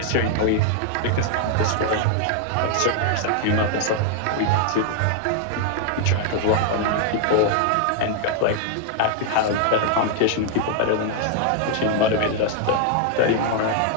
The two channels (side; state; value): both; different; correlation 0.00